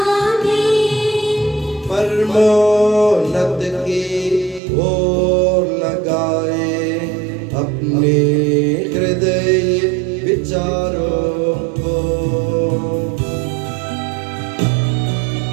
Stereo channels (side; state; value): left; drops out; at 4.6 s